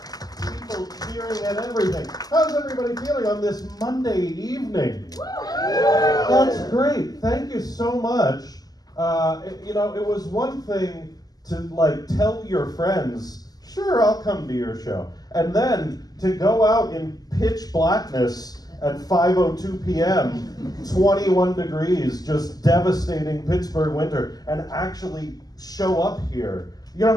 People cheering and everything. How's everybody feeling on this Monday evening? That's great. Thank you so much. It was one thing to tell your friends, sure, I'll come to your show. And then to go out in pitch blackness at 5:02 p.m., 21 degrees, just devastating Pittsburgh winter, and actually show up here. You know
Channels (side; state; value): right; late; 0.18 ms